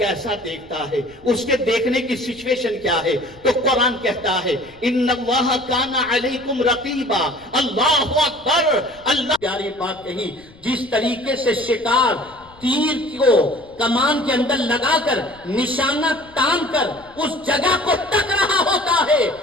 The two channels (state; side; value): noise; left; rumble, 25 dB below the sound